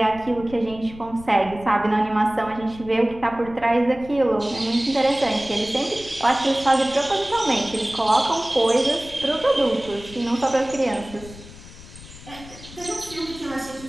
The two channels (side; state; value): left; noise; rumble, 17 dB below the sound